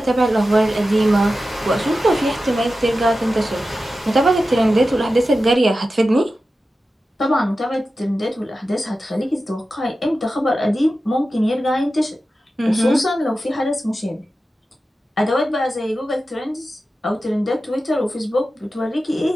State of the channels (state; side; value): normal; both; correlation 0.93